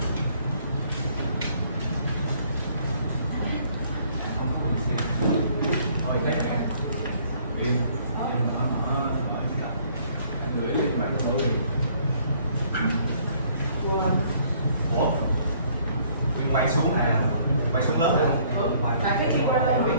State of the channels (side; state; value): both; inverted; correlation -0.61